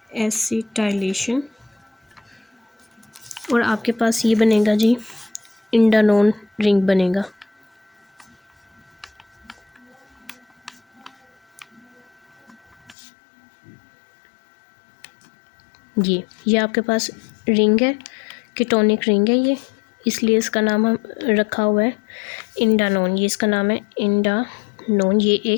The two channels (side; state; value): right; drops out; at 13.0 s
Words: एसिटाइलेशन, और आपके पास ये बनेगा जी इंडानोन रिंग बनेगा। ये आपके पास रिंग है, कीटोनिक रिंग है ये, इसलिए इसका नाम हम रखा हुआ है इंडानोन। ये इसका नाम है इंडानोन, ये